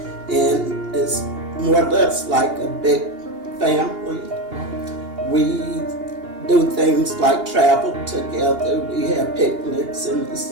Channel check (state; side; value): late; left; 2.8 ms